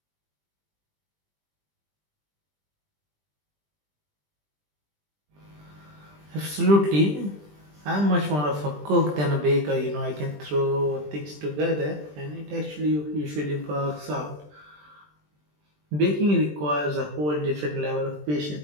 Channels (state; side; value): late; left; 20 ms